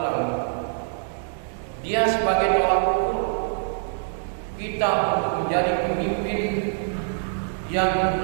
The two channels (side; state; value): left; silent; digital silence